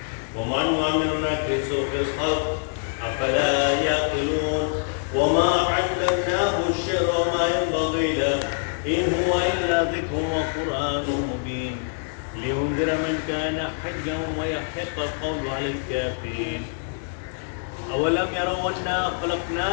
وما نعمر نكسه في الخلق أفلا يعقلون وما علمناه الشعر وما ينبغي له إن هو إلا ذكر وقرآن مبين لينذر من كان حيا ويحق القول على الكافرين أولم يروا أنا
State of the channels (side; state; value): right; silent; digital silence